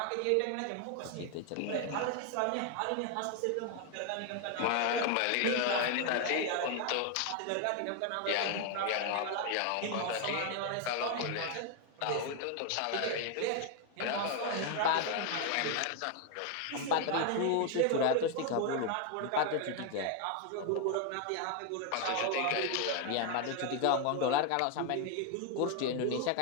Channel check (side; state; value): both; different; correlation 0.01